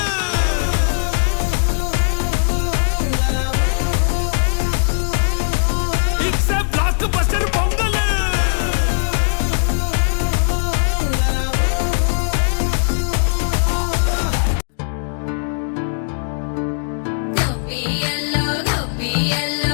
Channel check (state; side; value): silent; right; digital silence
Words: it's a blockbuster Pongal